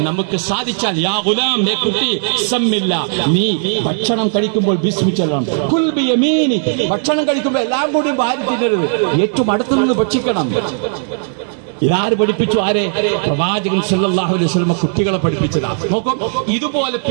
നമുക്ക് സാധിച്ചാൽ, യാ ഗുലാം, ഏ കുട്ടി, സമ്മില്ല, നീ ഭക്ഷണം കഴിക്കുമ്പോൾ ബിസ്മി ചൊല്ലണം. കുൽ ബിയമീനി, ഭക്ഷണം കഴിക്കുമ്പോൾ എല്ലാം കൂടി വാരി തിന്നരുത്, ഏറ്റവും അടുത്തു നിന്ന് ഭക്ഷിക്കണം. ഇതാര് പഠിപ്പിച്ചു? ആരെ? പ്രവാചകൻ സല്ലല്ലാഹു അലൈഹി വസല്ലം കുട്ടികളെ പഠിപ്പിച്ചതാണ്. നോക്കും, ഇതുപോലെ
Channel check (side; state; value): left; silent; digital silence